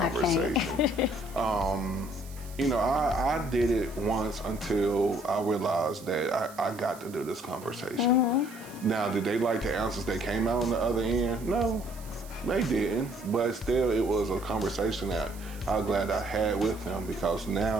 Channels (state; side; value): noise; right; hiss, 20 dB below the sound